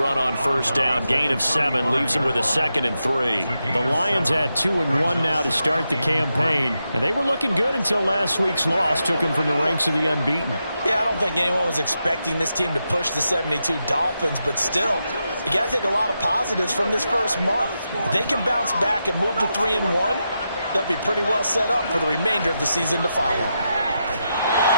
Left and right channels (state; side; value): inverted; both; correlation -0.86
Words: on first down. Gain of 7 leaves him with a 2nd and 3. The Lions at 2-1 now to start the campaign. And they were looking good until last week's loss took them from the ranks of the unbeaten. Yeah, I don't think anyone was expecting this team to push the 72 Dolphins, but still, you got to take a lot of positives from this first month. If they can bounce back and move to 3-1, they'll be pretty well set up for the remainder of the season to follow.